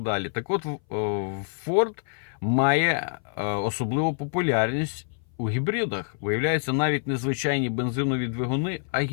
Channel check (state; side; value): silent; right; 58 dB below the other